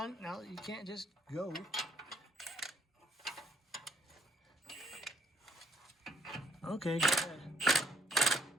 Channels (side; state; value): both; normal; correlation 0.68